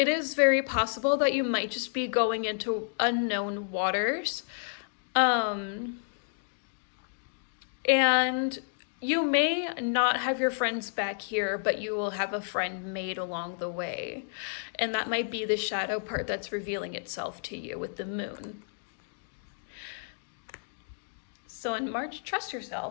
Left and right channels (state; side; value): silent; right; digital silence